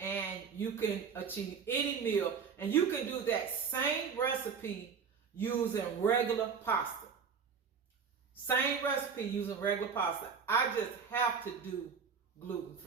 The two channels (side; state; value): left; quieter; 6.1 dB